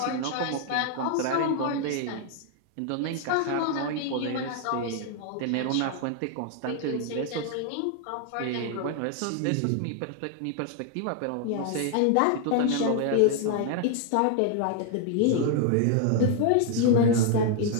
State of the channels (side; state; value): both; different; correlation 0.00